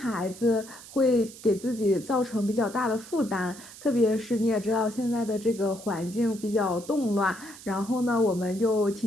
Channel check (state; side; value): noise; right; hiss, 17 dB below the sound